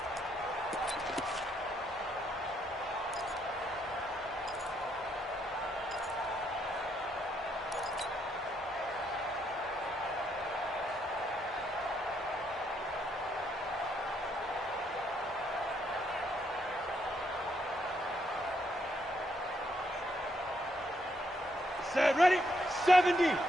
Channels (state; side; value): normal; both; correlation 0.74